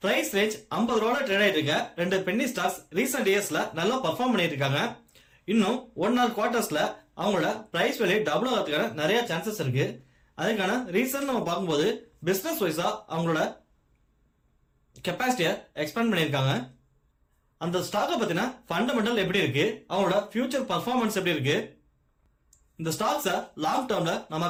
பிரைஸ் ரேஞ்ச் 50 ரூபாய் ட்ரேட் ஆயிட்டு இருக்க ரெண்டு பென்னி ஸ்டாக்ஸ் ரீசெண்ட் இயர்ஸ்ல நல்லா பெர்ஃபார்ம் பண்ணிட்டு இருக்காங்க. இன்னும் 1 ஆர் குவார்டர்ஸ்ல அவங்களோட பிரைஸ் வேல்யூ டபுள் ஆகிறதுக்கான நிறைய சான்சஸ் இருக்கு. அதுக்கான ரீசன் நம்ம பார்க்கும்போது பிசினஸ் வைஸா அவங்களோட கெப்பாசிட்டியை எக்ஸ்பேண்ட் பண்ணியிருக்காங்க. அந்த ஸ்டாக்கை பத்தின ஃபண்டமெண்டல் எப்படி இருக்கு, அவங்களோட ஃபியூச்சர் பர்ஃபார்மன்ஸ் எப்படி இருக்கு, இந்த ஸ்டாக்ஸை லாங் டேர்ம்ல நம்ம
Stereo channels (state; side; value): identical; both; correlation 1.00